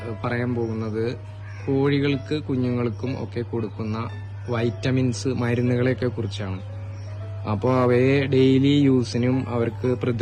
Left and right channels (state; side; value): identical; both; correlation 1.00